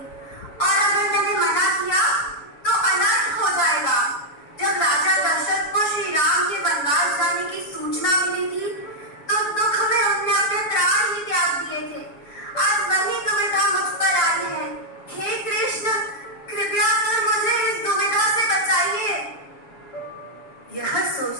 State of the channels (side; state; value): right; late; 7.2 ms